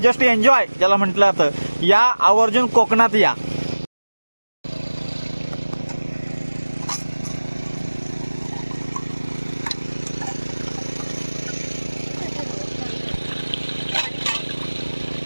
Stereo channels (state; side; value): inverted; both; correlation -1.00